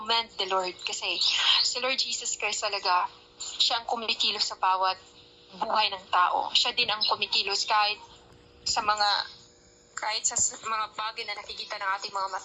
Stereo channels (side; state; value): both; identical; correlation 1.00